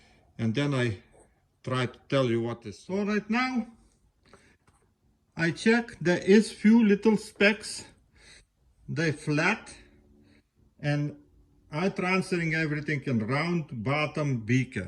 And then I try to tell you what is. So right now, I check, there is few little specks. They flat, and I transferring everything in round bottom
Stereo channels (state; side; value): identical; both; correlation 1.00